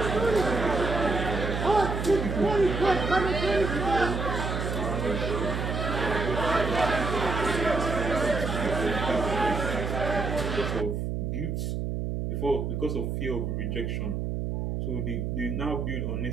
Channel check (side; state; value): right; noise; hum, 2 dB below the sound